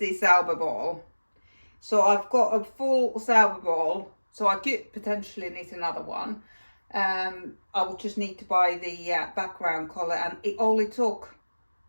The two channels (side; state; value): both; inverted; correlation -1.00